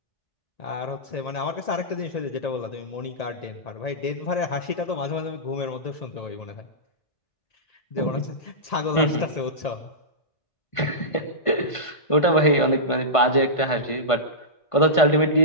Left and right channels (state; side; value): late; right; 1.5 ms